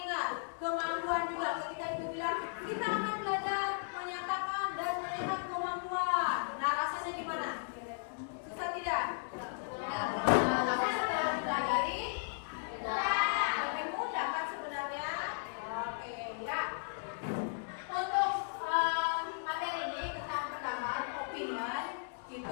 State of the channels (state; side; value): silent; right; digital silence